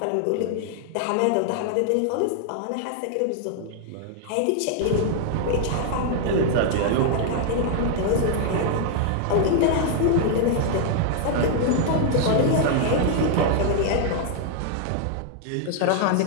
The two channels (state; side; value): different; both; correlation 0.00